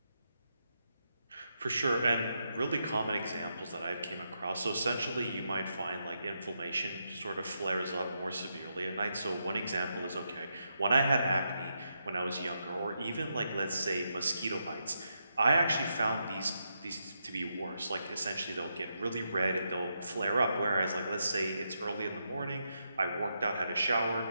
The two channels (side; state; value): both; inverted; correlation -0.83